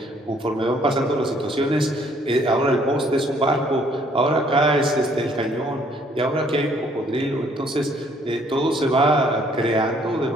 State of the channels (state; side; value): normal; both; correlation 0.63